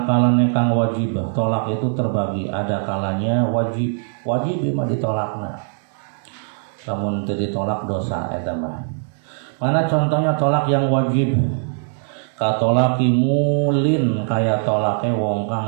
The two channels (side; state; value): left; silent; 65 dB below the other